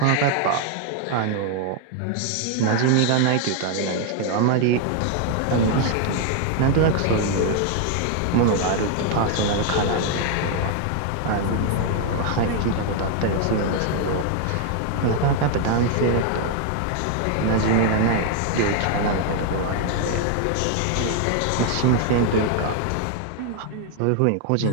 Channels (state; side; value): different; both; correlation 0.00